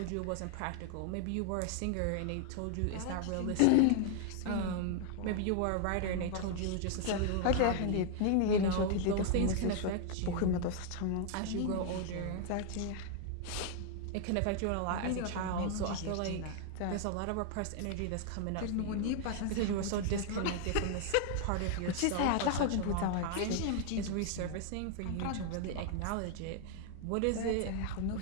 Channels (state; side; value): different; both; correlation 0.00